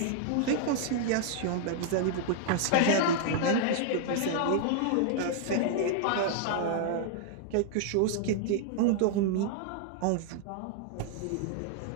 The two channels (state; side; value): different; both; correlation -0.01